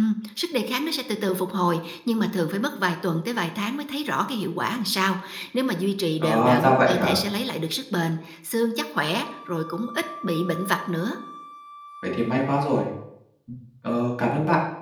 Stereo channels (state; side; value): identical; both; correlation 1.00